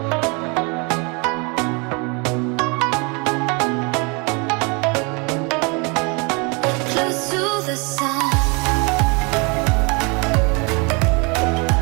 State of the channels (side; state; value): left; quieter; 30.8 dB